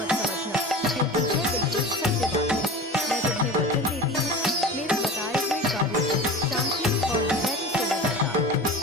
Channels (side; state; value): both; normal; correlation 0.34